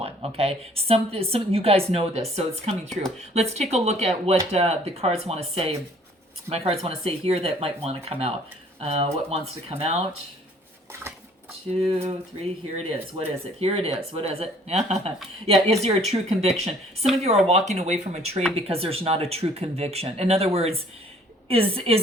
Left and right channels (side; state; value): both; normal; correlation 0.57